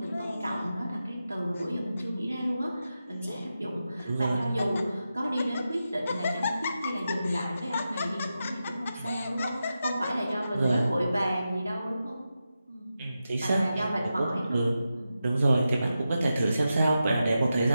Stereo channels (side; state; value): both; inverted; correlation -0.90